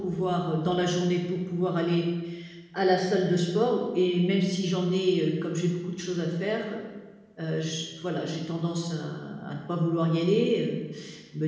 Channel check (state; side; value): identical; both; correlation 1.00